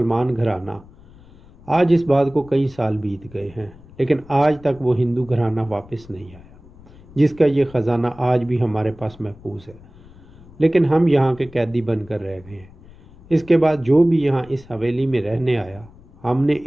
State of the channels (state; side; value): noise; left; rumble, 23 dB below the sound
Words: گھرانہ۔ آج اس بات کو کئی سال بیت گئے ہیں، لیکن آج تک وہ ہندو گھرانہ واپس نہیں آیا جس کا یہ خزانہ آج بھی ہمارے پاس محفوظ ہے، لیکن ہم یہاں کے قیدی بن کر رہ گئے ہیں۔ اس کے بعد جو بھی یہاں اس حویلی میں رہنے آیا ہم نے